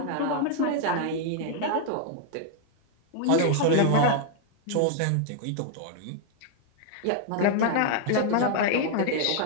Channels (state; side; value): different; both; correlation 0.00